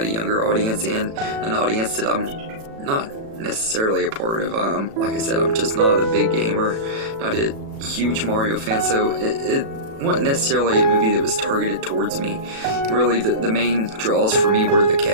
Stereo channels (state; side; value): late; left; 36 ms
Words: a younger audience and an audience that I'm not necessarily a part of. Like I said, I'm just not a big gamer, not a huge Mario fan, so it wasn't necessarily a movie that was targeted towards me. Really, the main draws for me were the